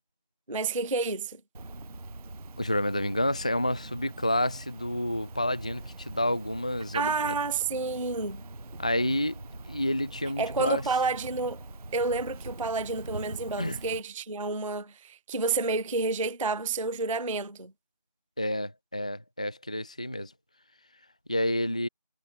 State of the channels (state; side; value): inverted; both; correlation -0.47